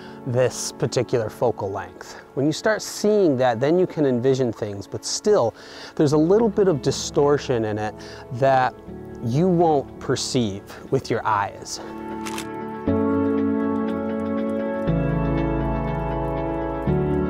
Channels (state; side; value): identical; both; correlation 1.00